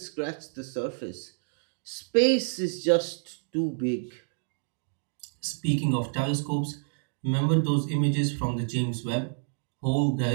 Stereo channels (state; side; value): silent; left; digital silence